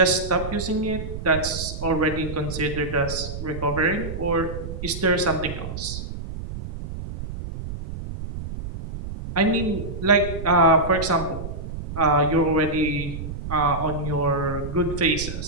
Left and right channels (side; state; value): right; noise; rumble, 8 dB below the sound